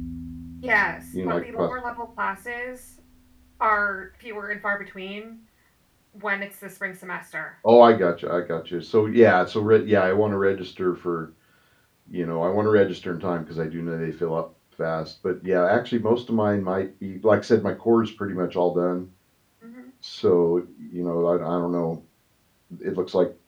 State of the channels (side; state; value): both; identical; correlation 1.00